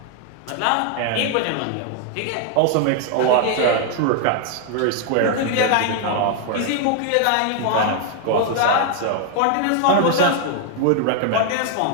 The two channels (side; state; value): both; different; correlation 0.00